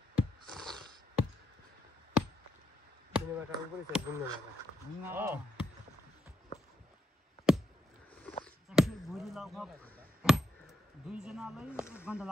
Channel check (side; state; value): both; normal; correlation 0.81